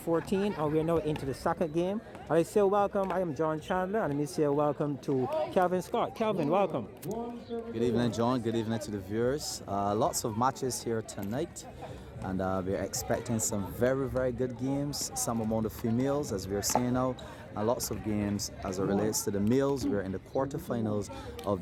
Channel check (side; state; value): both; identical; correlation 1.00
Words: and we're now into the second game. I say welcome. I am John Chandler, and let me say welcome to Calvin Scott. Calvin, welcome. Good evening, John. Good evening to the viewers. Lots of matches here tonight, and we're expecting some very, very good games. Some among the females, as we're seeing now, and lots of games as it relates to the males. We're in the quarterfinals